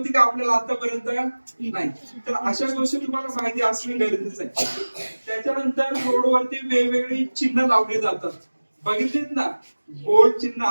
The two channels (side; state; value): both; inverted; correlation -1.00